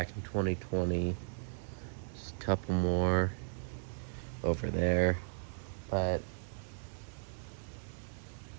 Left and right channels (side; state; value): left; silent; digital silence